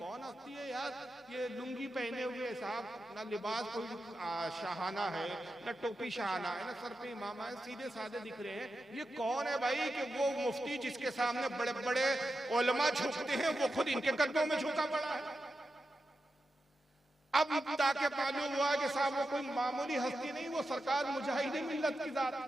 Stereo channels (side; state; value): both; normal; correlation 0.89